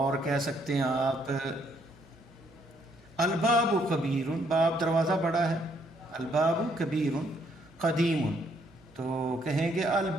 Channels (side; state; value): right; noise; hum, 29 dB below the sound